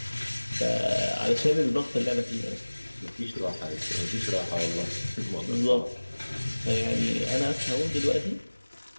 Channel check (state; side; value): inverted; both; correlation -1.00